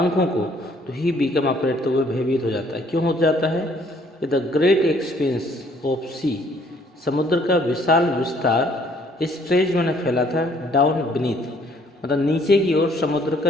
को, तो ही बिकम अफ्रेड, तो वह भयभीत हो जाता है। क्यों हो जाता है? द ग्रेट एक्सपेंस ऑफ सी, समुद्र का विशाल विस्तार, स्ट्रेच मैंने फैला था, डाउन बीनीथ, मतलब नीचे की ओर समुद्र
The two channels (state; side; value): normal; both; correlation 0.62